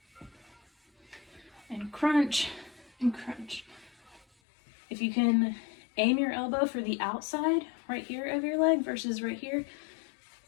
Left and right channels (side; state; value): right; drops out; at 4.2 s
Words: And crunch, and crunch. If you can aim your elbow for the outside right here of your leg versus right here,